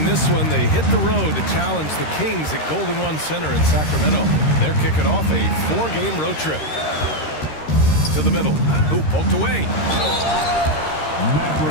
this one, they hit the road to challenge the Kings at Golden One Center in Sacramento. They're kicking off a 4-game road trip. To the middle. Ooh, poked away.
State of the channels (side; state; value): right; late; 13 ms